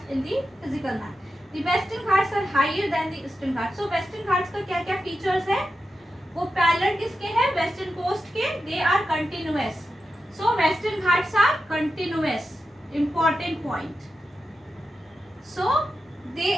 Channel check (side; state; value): both; normal; correlation 0.90